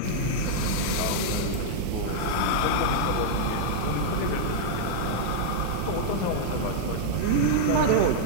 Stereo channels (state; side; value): different; both; correlation -0.02